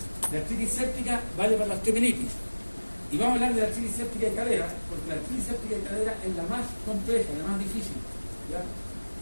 de artritis séptica vale para la osteomelitis. Y vamos a hablar de la artritis séptica de cadera, porque la artritis séptica de cadera es la más compleja, la más difícil. ¿Ya?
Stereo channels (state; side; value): inverted; both; correlation -1.00